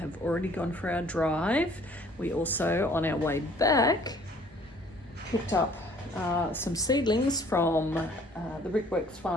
already gone for our drive. We also, on our way back, picked up some seedlings from the Brickworks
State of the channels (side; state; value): both; normal; correlation 0.56